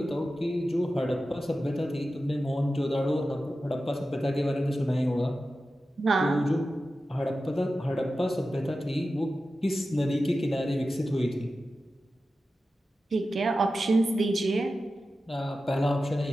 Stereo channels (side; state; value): both; normal; correlation 0.93